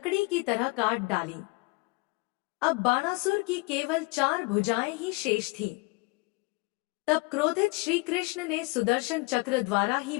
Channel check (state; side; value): quieter; right; 26.9 dB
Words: की तरह काट डाली। अब बाणासुर की केवल 4 भुजाएं ही शेष थीं। तब क्रोधित श्री कृष्ण ने सुदर्शन चक्र द्वारा ही